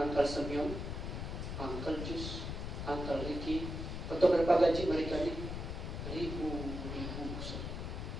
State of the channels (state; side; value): noise; left; rumble, 5 dB below the sound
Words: Uncle Semyon, Uncle Jus, Uncle Ricky, atau berapa gaji mereka ini? Ribu.